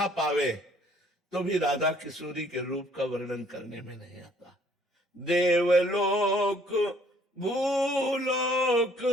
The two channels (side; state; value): both; normal; correlation 0.60